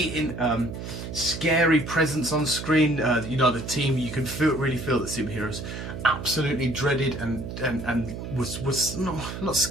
scary presence on screen. You know, the team, you can really feel the superheroes absolutely dreaded and was not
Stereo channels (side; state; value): right; noise; hum, 8 dB below the sound